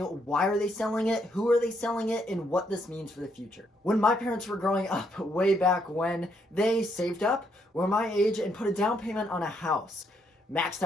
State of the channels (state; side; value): normal; both; correlation 0.74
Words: are they selling it, who are they selling it, and what this means for the future. When my parents were growing up, way back when, they saved up, were my age, and put a down payment on a house, maxed